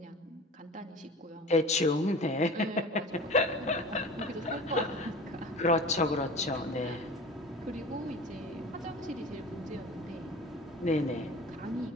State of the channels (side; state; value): both; normal; correlation 0.38